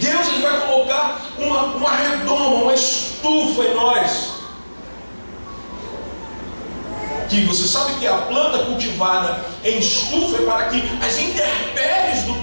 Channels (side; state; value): both; inverted; correlation -1.00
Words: ele vai colocar uma redoma, uma estufa em nós. Que você sabe que a planta cultivada em estufa é para que as intempéries do